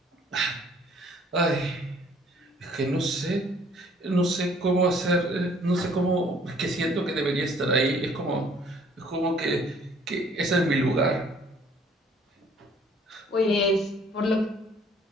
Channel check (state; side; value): normal; both; correlation 0.58